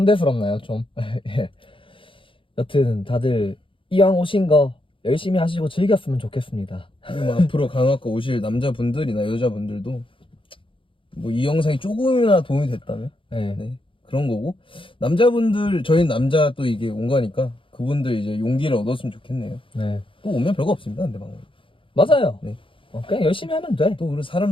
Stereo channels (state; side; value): late; right; 0.25 ms